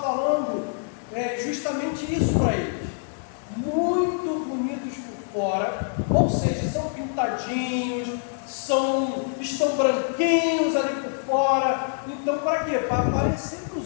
falando justamente isso para eles. Muito bonitos por fora, ou seja, são pintadinhos, estão branquinhos ali por fora. Então, para quê? Para aparecer para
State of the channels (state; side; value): silent; right; 61 dB below the other